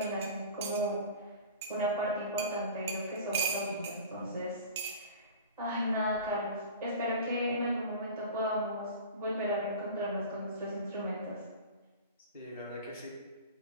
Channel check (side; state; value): both; inverted; correlation -0.36